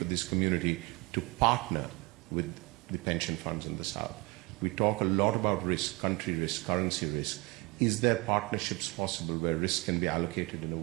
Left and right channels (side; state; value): left; quieter; 25.2 dB